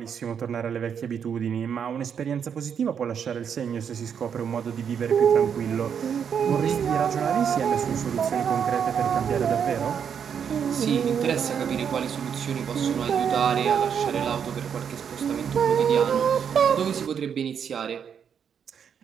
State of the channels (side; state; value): left; quieter; 7.6 dB